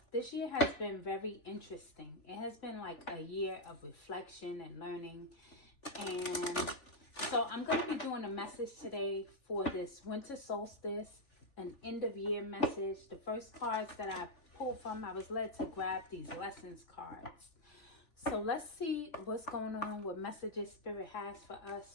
this year has been very interesting. It has been like a year of reflection and learning. And so I'm going to be doing a message today for this winter solstice, an end of year message. The first cards that I pulled from, I was led to grab these lessons cards. So let's see what's going on, what messages Spirit has for us.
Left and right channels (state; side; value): late; right; 3.4 ms